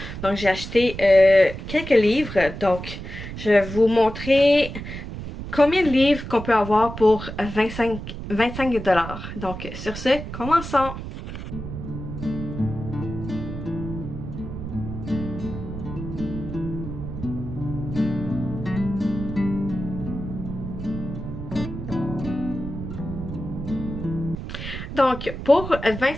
Donc, j'ai acheté quelques livres. Donc, je vais vous montrer combien de livres qu'on peut avoir pour 25 $. Donc, sur ce, commençons! Donc, pour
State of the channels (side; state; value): right; noise; rumble, 8 dB below the sound